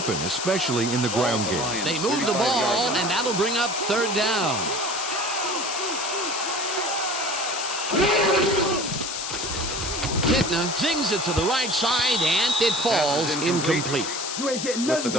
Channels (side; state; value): left; noise; hiss, 4 dB below the sound